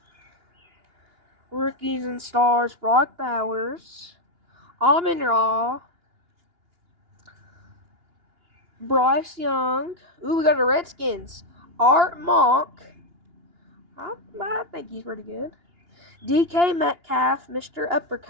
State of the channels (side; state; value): left; late; 2.8 ms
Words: Rookies and stars, Brock Bowers, Amon-Ra, Bryce Young. Ooh, we got the Redskins. Art Monk. I think he's pretty good. DK Metcalf, Mr.